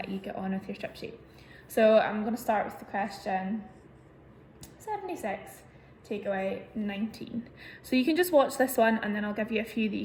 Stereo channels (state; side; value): identical; both; correlation 1.00